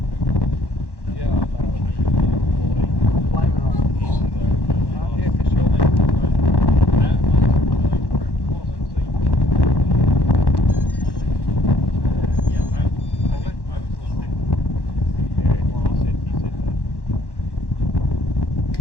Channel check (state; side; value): late; right; 1.1 ms